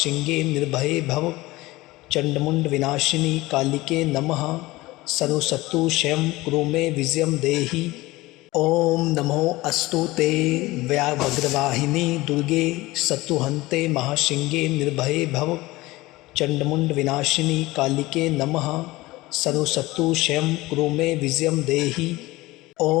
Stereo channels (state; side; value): quieter; right; 19.7 dB